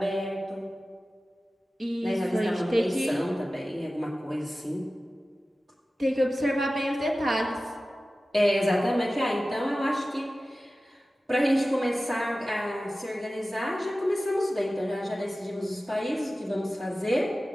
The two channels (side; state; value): both; normal; correlation 0.96